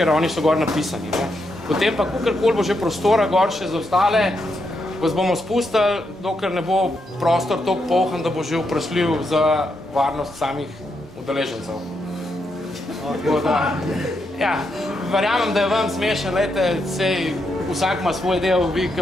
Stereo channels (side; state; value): both; normal; correlation 0.81